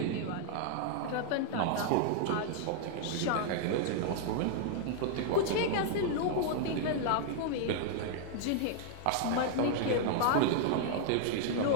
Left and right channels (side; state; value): both; different; correlation 0.00